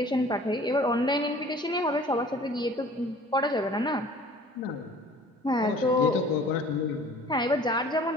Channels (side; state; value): both; normal; correlation 0.49